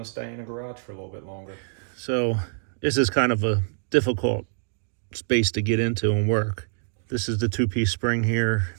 to stay in the garage for a little bit longer. So this is kind of a difficult space to get into and work. This is the two-piece spring here.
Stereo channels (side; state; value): left; silent; 61 dB below the other